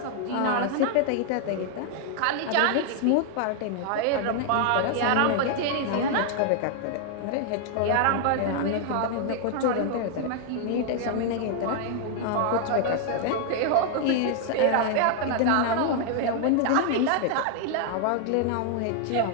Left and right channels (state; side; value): different; both; correlation 0.00